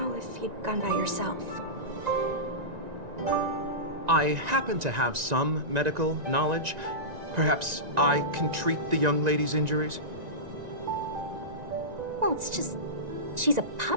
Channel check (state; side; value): late; left; 1.9 ms